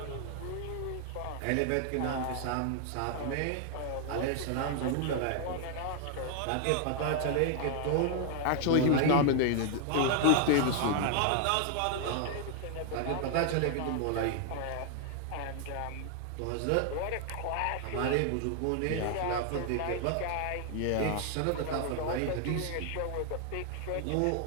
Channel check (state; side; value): different; both; correlation 0.00